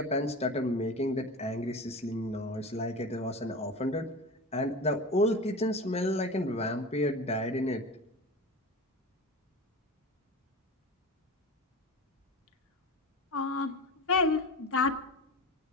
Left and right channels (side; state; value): both; normal; correlation 0.30